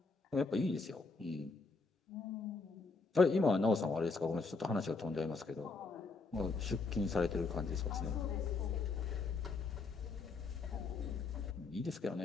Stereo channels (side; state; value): right; quieter; 4.1 dB